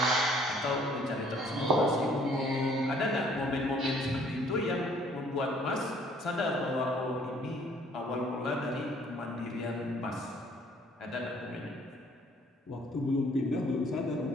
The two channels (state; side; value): normal; both; correlation 0.59